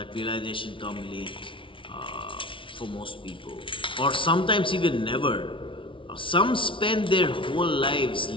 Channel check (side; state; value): right; late; 0.25 ms